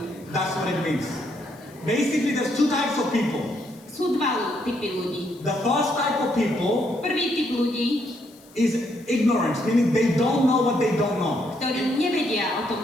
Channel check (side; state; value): left; noise; hiss, 27 dB below the sound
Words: That's what it means. Basically, there's two types of people. Sú dva typy ľudí. The first type of people Prvý typ ľudí, is ignorance, meaning they don't know what they don't know. ktorí nevedia o tom,